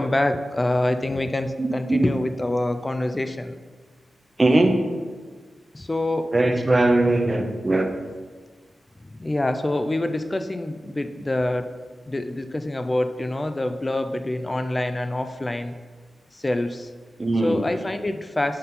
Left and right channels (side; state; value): both; normal; correlation 0.95